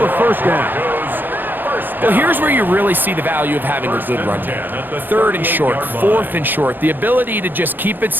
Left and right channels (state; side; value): late; left; 0.091 ms